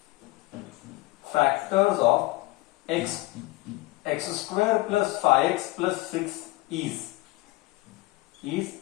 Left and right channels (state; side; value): quieter; right; 20.4 dB